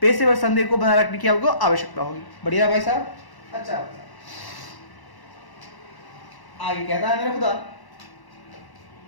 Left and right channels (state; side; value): late; right; 1.1 ms